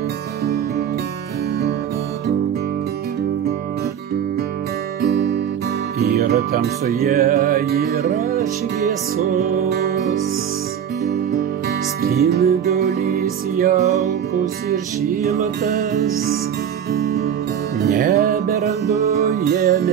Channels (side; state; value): left; quieter; 8.8 dB